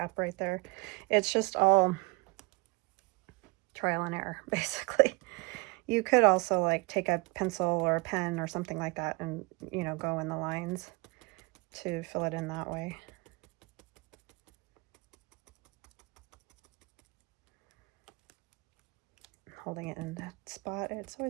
right there. It's just all trial and error, basically. You could also like take a pencil or a pen or something like that and, you know, go in the lines to fill it in that way. Holding it in that spot, it's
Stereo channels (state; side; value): quieter; left; 27.4 dB